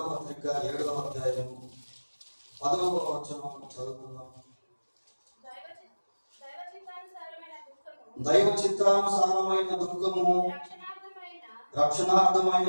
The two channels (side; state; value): both; inverted; correlation -1.00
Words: పత్రిక 7వ అధ్యాయం 10వ వచనం చదువుకుందాం. దైవ చిత్తానుసారమైన దుఃఖము